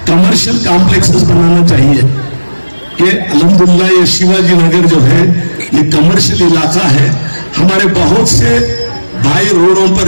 कमर्शियल कॉम्प्लेक्सेस बनाना चाहिए कि अल्हम्दुलिल्लाह ये शिवाजी नगर जो है ये कमर्शियल इलाका है। हमारे बहुत से भाई रोडों पर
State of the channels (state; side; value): inverted; both; correlation -1.00